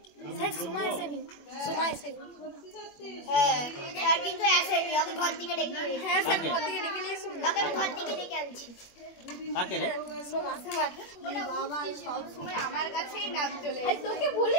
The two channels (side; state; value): right; late; 21 ms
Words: কিন্তু আসেনি ওকে ঘর থেকে ডেকে হ্যাঁ স্যার ঘর থেকে ডেকে নিয়ে শুন ওকে আমি ঘর থেকে ডেকে আনছি কাকে রে সোমা ওটা বাবা সব সময় আমার কাছেই নাম চলে আসে তোকে